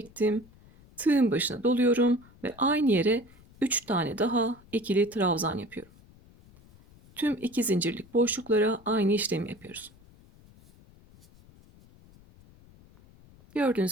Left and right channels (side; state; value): left; noise; rumble, 25 dB below the sound